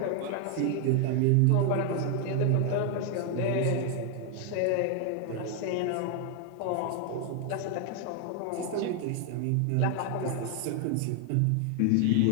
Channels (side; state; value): both; different; correlation 0.00